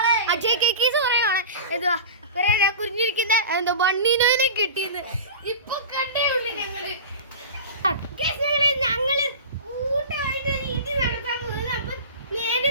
അജയ് കേക്കീസ് പറയുകയാണ് എന്തുവാ കുറിഞ്ഞിരിക്കുന്ന എന്തോ ബണ്ണീനോനെ കിട്ടിയെന്ന് ഇപ്പൊ കണ്ടേ ഉള്ളു ഞങ്ങള് കൂട്ടമായിട്ട് ഒരു ഇടി നടത്താൻ പോകുന്നത്. അപ്പൊ നേരെ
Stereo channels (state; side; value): inverted; both; correlation -0.32